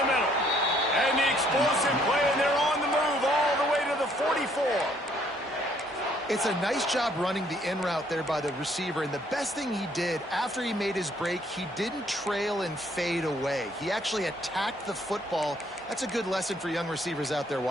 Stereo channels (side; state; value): both; normal; correlation 0.65